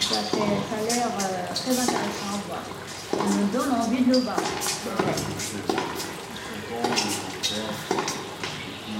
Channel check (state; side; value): identical; both; correlation 1.00